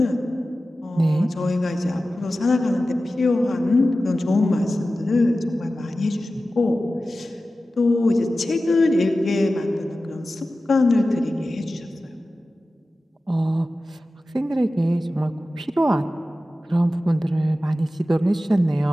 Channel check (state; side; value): normal; both; correlation 0.95